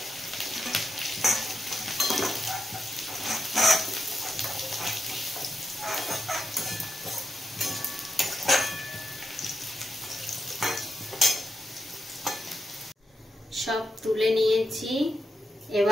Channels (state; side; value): normal; both; correlation 0.85